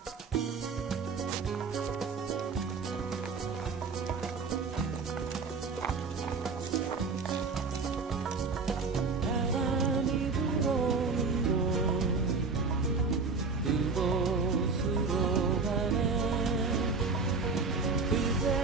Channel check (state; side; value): quieter; left; 4.5 dB